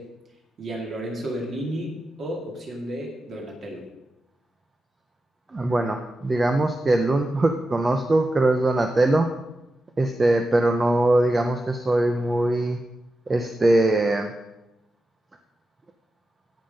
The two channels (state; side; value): normal; both; correlation 0.90